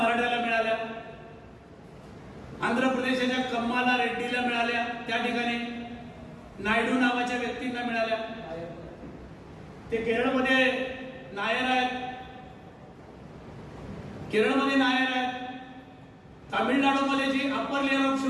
मिळाल्या, आंध्र प्रदेशाच्या कम्माला रेड्डीला मिळाल्या, त्या ठिकाणी नायडू नावाच्या व्यक्तींना मिळाल्या, ते केरळमध्ये नायर आहेत, तामिळनाडूमध्ये जी अप्पर लेअर ऑफ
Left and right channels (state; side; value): identical; both; correlation 1.00